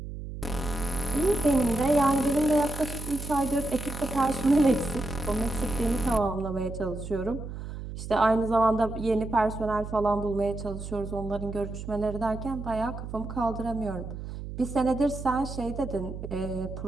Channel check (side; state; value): right; noise; hum, 9 dB below the sound